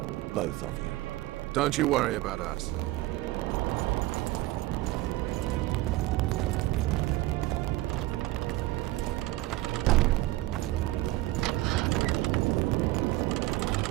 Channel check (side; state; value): left; quieter; 18.2 dB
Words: Both of you. Don't you worry about us.